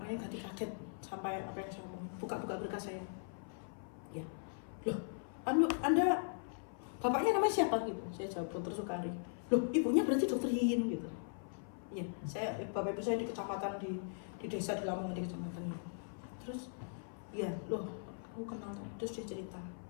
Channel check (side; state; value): right; silent; 52 dB below the other